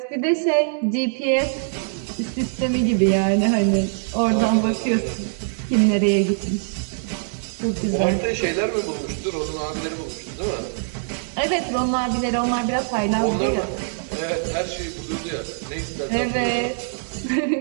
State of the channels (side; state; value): left; silent; digital silence